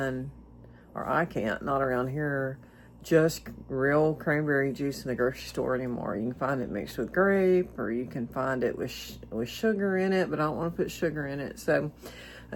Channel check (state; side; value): identical; both; correlation 1.00